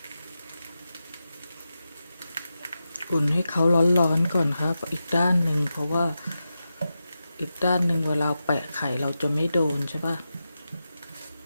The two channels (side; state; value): both; inverted; correlation -0.91